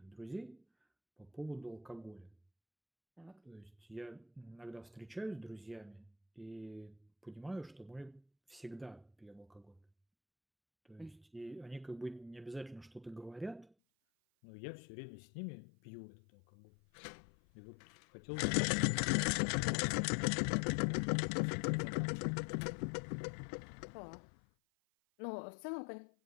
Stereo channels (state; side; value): drops out; right; at 13.7 s